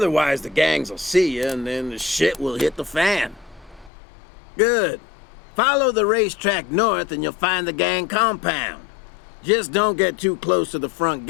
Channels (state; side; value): drops out; right; at 3.9 s